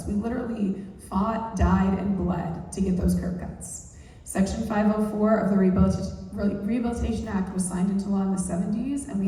we literally fought, died, and bled to get those curb cuts. Section 504 of the Rehabilitation Act was signed into law in the 70s, and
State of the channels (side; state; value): both; identical; correlation 1.00